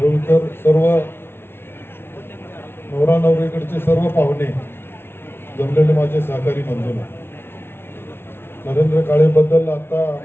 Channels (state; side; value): late; right; 0.11 ms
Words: सर्व नवरा नवरीकडचे सर्व पाहुणे, जमलेले माझे सहकारी बंधूंनो, नरेंद्र काळेबद्दल आता